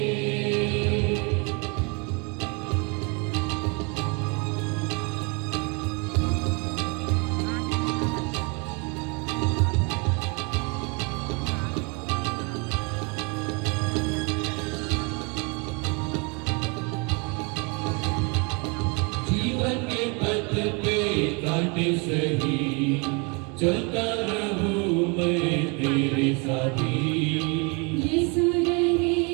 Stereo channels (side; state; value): left; quieter; 31.8 dB